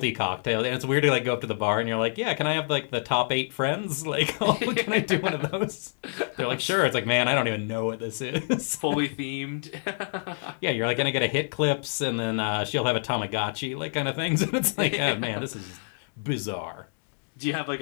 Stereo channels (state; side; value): silent; right; digital silence